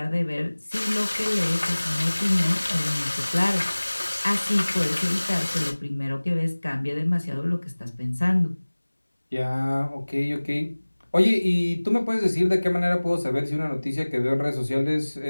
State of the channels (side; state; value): both; inverted; correlation -1.00